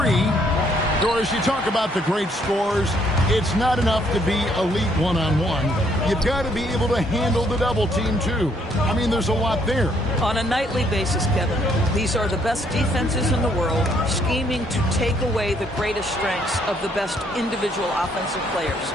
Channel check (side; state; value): both; normal; correlation 0.68